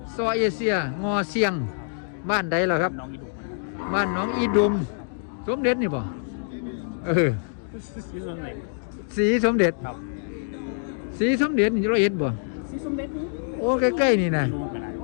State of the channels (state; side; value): silent; right; digital silence